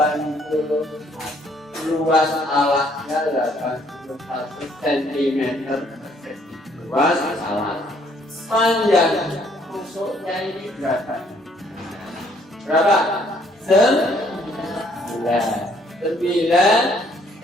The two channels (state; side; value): normal; both; correlation 0.65